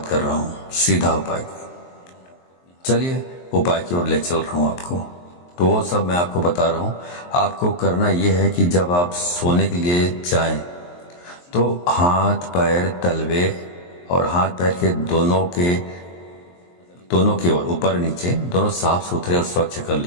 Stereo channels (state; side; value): late; right; 23 ms